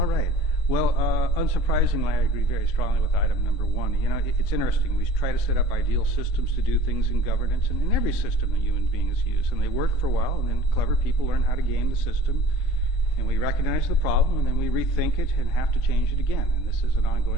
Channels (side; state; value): right; late; 3.7 ms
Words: right. Well, unsurprisingly, I agree very strongly with item number 1. It's interesting. We try to set up ideal systems to do things in governance, and in every system that human beings use, and they work for a while, and then clever people learn how to game the system, and we recognize the problem, and then we rethink it and have to change it again. And this is an